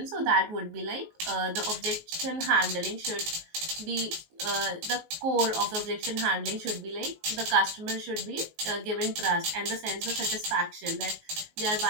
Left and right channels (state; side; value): late; left; 19 ms